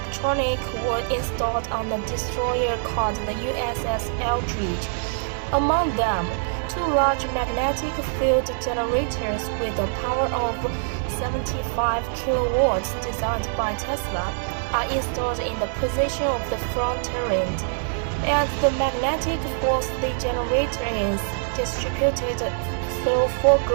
were installed on the destroyer called the USS Eldridge. Among them, 2 large magnetic field generators with a power of 75 kilowatts designed by Tesla are installed in the position of the front turret, and the magnetic force the generator is distributed through 4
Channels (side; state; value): left; silent; digital silence